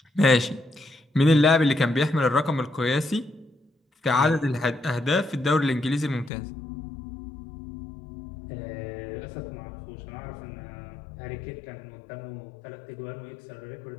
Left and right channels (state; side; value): drops out; right; at 6.3 s